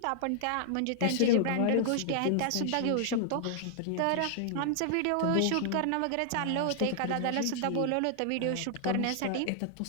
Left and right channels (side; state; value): both; different; correlation -0.01